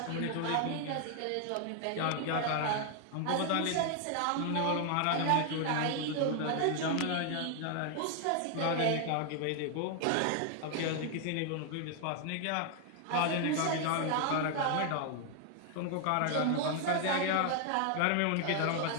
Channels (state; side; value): different; both; correlation 0.00